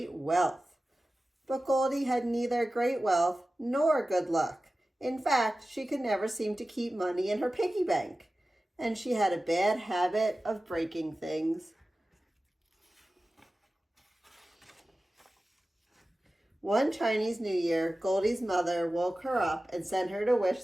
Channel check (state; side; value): normal; both; correlation 0.95